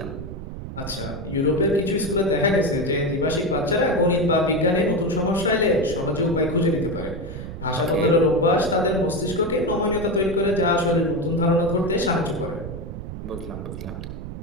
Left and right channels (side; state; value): right; noise; rumble, 9 dB below the sound